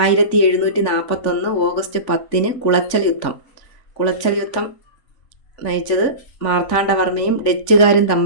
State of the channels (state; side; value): late; right; 3.5 ms